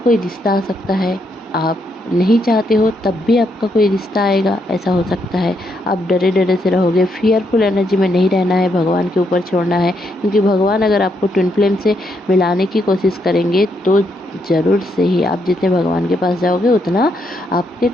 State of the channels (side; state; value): both; normal; correlation 0.77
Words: रिश्ता आ सकता है, आप नहीं चाहते हो तब भी आपका कोई रिश्ता आएगा, ऐसा हो सकता है। आप डरे डरे से रहोगे, फियरफुल एनर्जी में नहीं रहना है, भगवान के ऊपर छोड़ना है, क्योंकि भगवान अगर आपको ट्विन फ्लेम से मिलाने की कोशिश करेंगे तो ज़रूर से ही आप जितने भगवान के पास जाओगे उतना आपके